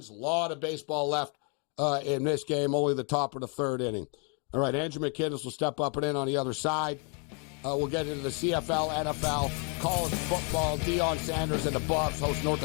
A lot of baseball left in this game. Only the top of the third inning. All right, Andrew McKinnis will step up and in on the other side. We'll get into the CFL, NFL, college football. Deion Sanders and the Buffs host North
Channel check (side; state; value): right; quieter; 37.1 dB